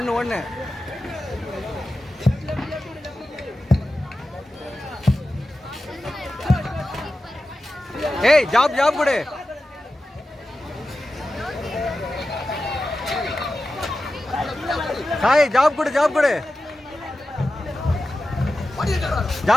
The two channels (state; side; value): normal; both; correlation 0.93